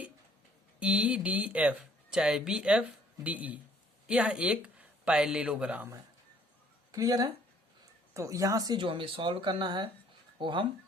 चाहे BFDE यह एक पैरेललोग्राम है। क्लियर है? तो यहां से जो हमें सॉल्व करना है वो हम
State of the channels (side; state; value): both; normal; correlation 0.61